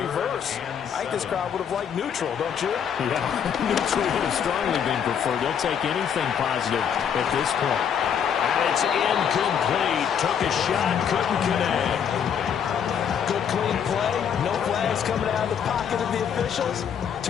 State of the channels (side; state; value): right; quieter; 8.0 dB